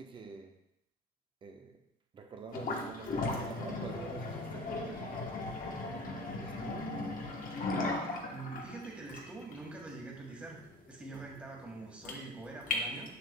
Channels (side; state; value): both; normal; correlation 0.38